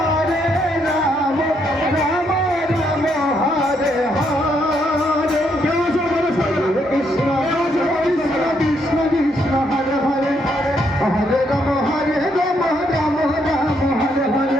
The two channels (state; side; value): normal; both; correlation 0.75